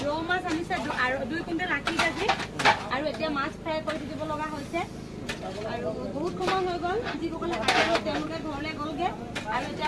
ৰৌ মাছ আনিছে আৰু 2 কুইণ্টেল 80 কেজি আৰু এতিয়া মাছ ফ্ৰাই কৰি দিব লগা হৈছে আৰু বহুত সময় হৈ গ'ল যিসকলে কাটিব তেওঁলোকে ঘৰলৈ গ'লগে আৰু এতিয়া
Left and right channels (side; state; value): both; identical; correlation 1.00